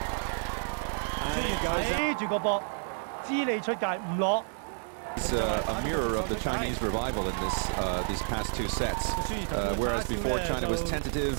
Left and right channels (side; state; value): left; silent; digital silence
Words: ，and it goes out. 黐住個波，知你出界唔攞。 It's a mirror of the Chinese revival in these past two sets. Whereas before China was